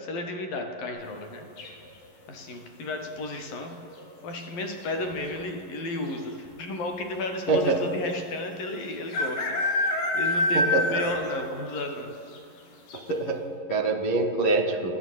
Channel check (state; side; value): late; right; 11 ms